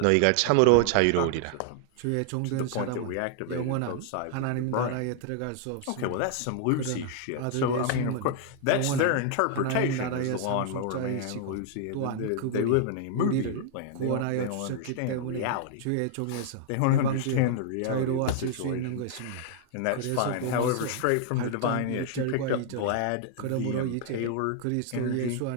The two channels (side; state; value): both; different; correlation 0.00